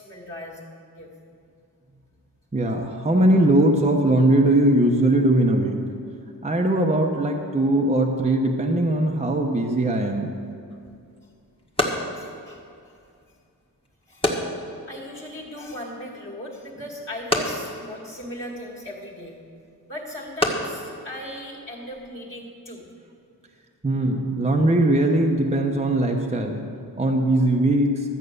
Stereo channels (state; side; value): normal; both; correlation 0.53